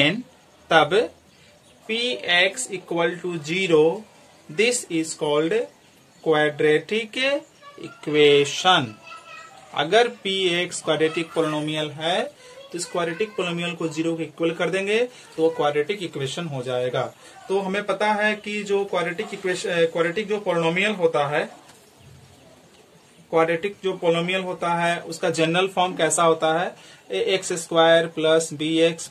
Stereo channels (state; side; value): identical; both; correlation 1.00